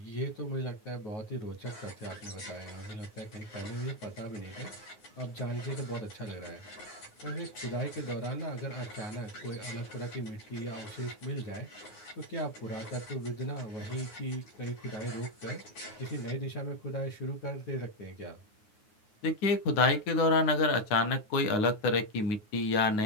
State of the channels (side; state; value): right; late; 9.5 ms